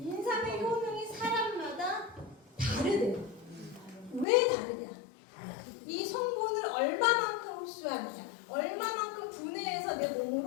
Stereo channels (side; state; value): right; drops out; at 4.2 s